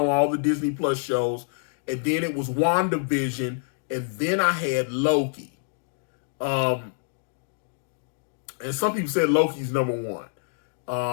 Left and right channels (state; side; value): silent; right; digital silence